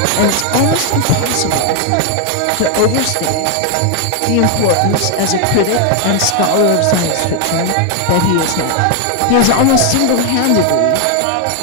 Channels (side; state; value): both; different; correlation 0.01